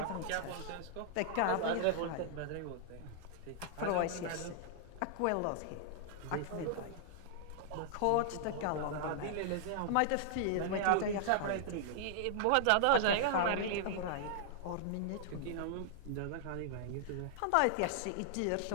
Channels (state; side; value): different; both; correlation -0.01